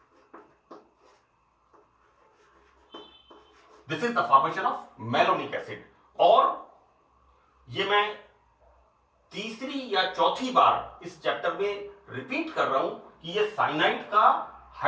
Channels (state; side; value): identical; both; correlation 1.00